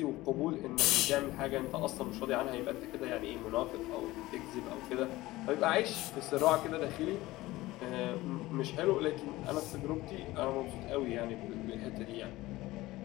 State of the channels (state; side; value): quieter; right; 18.4 dB